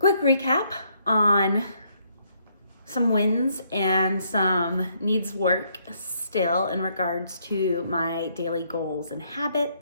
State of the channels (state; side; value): inverted; both; correlation -0.71